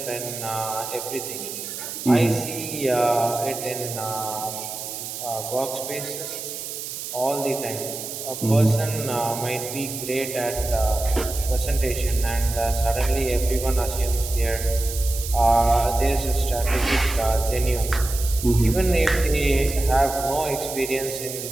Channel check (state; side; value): noise; right; hiss, 8 dB below the sound